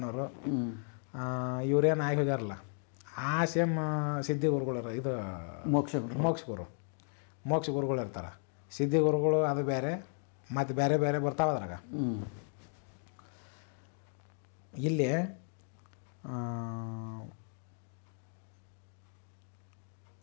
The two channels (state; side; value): silent; right; 54 dB below the other